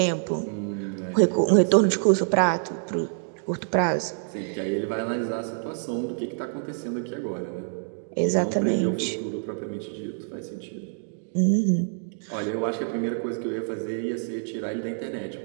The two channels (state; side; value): silent; left; digital silence